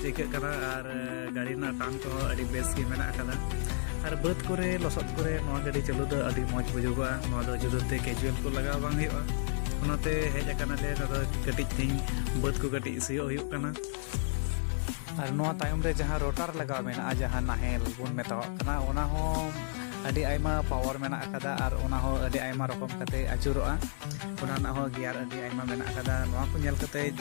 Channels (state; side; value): silent; right; digital silence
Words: ᱟᱹᱭᱠᱟᱹᱜ ᱠᱟᱱᱟ ᱟᱨ ᱜᱟᱹᱰᱤ ᱨᱮᱱᱟᱜ ᱴᱟᱱ ᱠᱚᱦᱚᱸ ᱟᱹᱰᱤ ᱵᱮᱥ ᱜᱮ ᱢᱮᱱᱟᱜ ᱟᱠᱟᱫᱟ আর বাদ করে লসত করে নয়া গাড়ি চালু ᱫᱚ ᱟᱹᱰᱤ ᱢᱚᱡᱽ ᱵᱩᱡᱩᱜᱚᱜᱼᱟ ᱱᱚᱣᱟ ᱫᱚ ᱡᱩᱫᱟᱹᱛᱮ ᱠᱮᱡᱩয়াᱞ ᱠᱚ ᱞᱟᱜᱟᱣ ᱵᱟᱝ ᱦᱩᱭᱩᱜᱼᱟ ᱚᱱᱟᱛᱮ ᱦᱮᱡ ᱟᱠᱟᱱᱟᱞᱮ ᱱᱚᱰᱮ ᱠᱟᱹᱴᱤᱡ ᱛᱤᱧ ᱵᱟᱹᱫ ᱠᱚ ᱠᱟᱹᱴᱤᱡ ᱥᱤᱭᱳᱜ ᱦᱩᱭᱩᱜ ᱠᱟᱱᱟ আর নয়া তাᱭᱚᱢ রে ᱡᱟᱦᱟᱸ ᱨᱳᱴᱟর ᱞᱟᱜᱟᱣ ᱢᱮᱱᱟᱜᱼᱟ ᱡᱟᱦᱟᱸ ᱱᱟᱦᱮᱞ ᱵᱚᱱ ᱢᱮᱛᱟᱣᱟᱜ ᱠᱟᱱᱟ ᱚᱱᱟ ᱦᱚᱸ ᱟᱹᱰᱤ ᱟᱭᱢᱟ ᱯᱟᱣᱟᱨ ᱢᱮᱱᱟᱜ ᱟᱠᱟᱫᱟ ᱟᱨ ᱚᱱᱟ ᱦᱚᱸ ᱟᱹᱰᱤ ᱟᱭᱢᱟ ᱨᱚᱠᱚᱢ ᱠᱟᱛᱮ ᱟᱹᱪᱩᱨᱚᱜᱼᱟ ᱚᱱᱟ ᱨᱮᱱᱟᱜ ᱦᱚᱸ ᱜᱤᱭᱟᱨ ᱟᱹᱰᱤ ᱟᱭᱢᱟ ᱢᱮᱱᱟᱜ ᱟᱠᱟᱫᱟ ᱱᱚᱣᱟ ᱠᱚ ᱧᱮᱞ ᱠᱟᱛᱮ